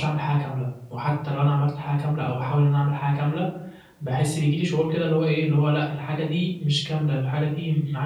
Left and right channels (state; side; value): identical; both; correlation 1.00